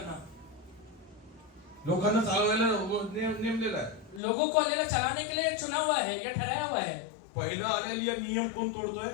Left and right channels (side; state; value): right; drops out; at 4.2 s